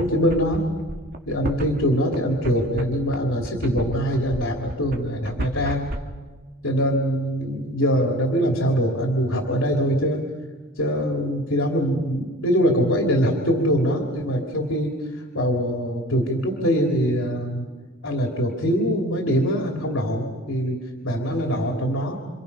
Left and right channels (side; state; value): both; normal; correlation 0.42